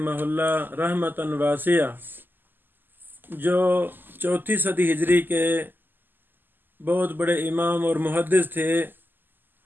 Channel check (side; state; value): left; late; 0.091 ms